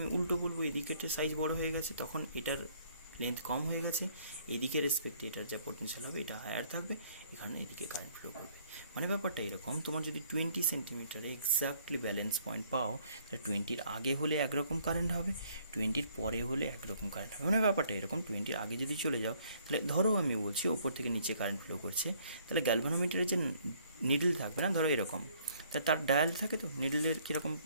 উল্টো বলবো এদিকের সাইজ বড় হয়ে গেছে, তখন এটার লেন্থ কম হয়ে গেছে, এদিকে রেসপেক্টে এটার যা পোটেনশিয়াল হবে এটা হায়ার থাকবে, এখানে এদিকে কারেন্ট ফ্লো করবে। মানে ব্যাপারটা এরকম, তোমার যদি 20 সেন্টিমিটারে এক্স্যাক্টলি ব্যালেন্স পয়েন্ট পাও, তাহলে 20-র আগে হলে একরকম কারেন্ট হবে, 20-র পরে হলে একরকম কারেন্ট হবে। মানে ব্যাপারটা এরকম, 20-র আগে যদি চলে যাও, তাহলে ধরো আমি বলছি ওপর থেকে নিচে কারেন্ট ফ্লো করছে, তাহলে গ্যালভানোমিটারের যে নিডল থাকবে না, ধরো এরকম, তা তার ডায়াল থাকে, তো নিডলের কীরকম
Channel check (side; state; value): both; inverted; correlation -0.63